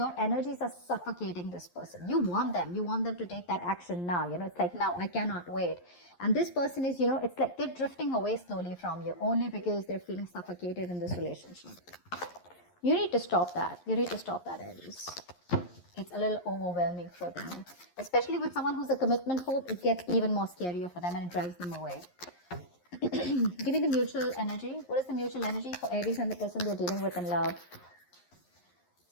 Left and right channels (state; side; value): late; right; 11 ms